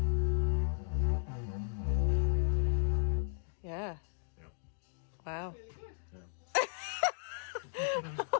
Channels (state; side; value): silent; right; digital silence